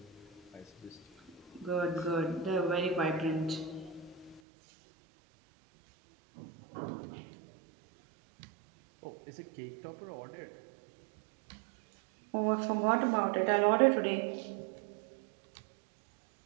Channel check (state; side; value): drops out; left; at 4.4 s